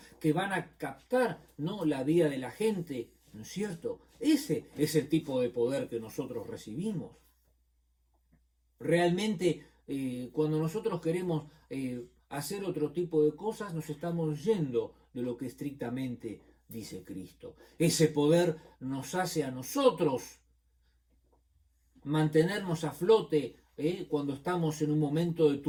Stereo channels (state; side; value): identical; both; correlation 1.00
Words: que van a captar, ¿no?, la vida de la gente, ¿no es cierto? Ese es el tipo de poder que nosotros recibimos. Realmente, cuando nosotros queremos hacer otro tipo de cosas, nos estamos yendo de lo que estrictamente dice Cristo. Ese poder nos hace a nosotros mantenernos a flote cuando estamos en un momento de